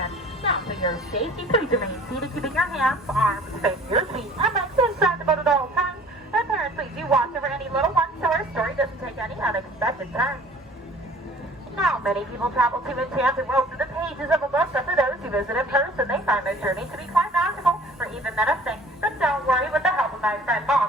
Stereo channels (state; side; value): normal; both; correlation 0.50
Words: Now, for your safety, please remain seated, keeping your hands, arms, facing your feet, and legs inside the boat at all times. And parents, please do watch over any little ones so our story doesn't take any unexpected turns. Now, many people travel to enchanted worlds through the pages of a book, but for those who visit in person, they find their journey to be quite magical, or even menacing. But don't worry, with the help of my friend